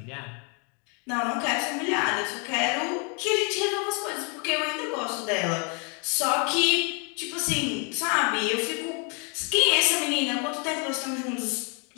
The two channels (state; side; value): quieter; right; 36.4 dB